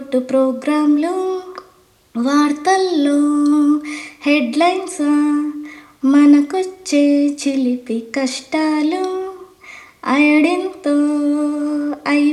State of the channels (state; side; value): identical; both; correlation 1.00